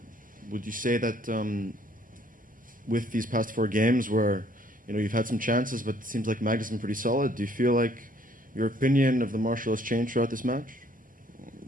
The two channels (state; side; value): normal; both; correlation 0.62